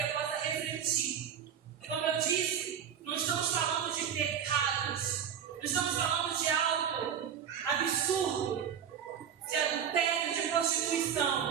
possa refletir. Como eu disse, não estamos falando de pecados, não estamos falando de algo absurdo, de adultério, de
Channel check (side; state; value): left; quieter; 8.3 dB